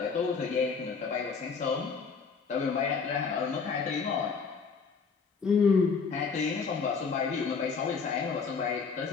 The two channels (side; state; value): right; quieter; 5.3 dB